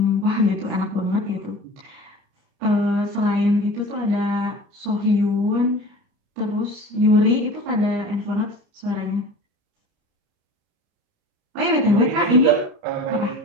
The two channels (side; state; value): left; late; 29 ms